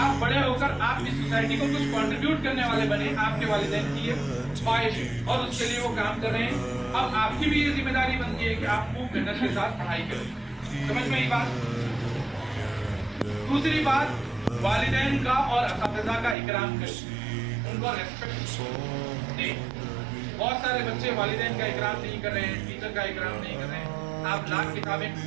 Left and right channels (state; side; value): drops out; left; at 16.4 s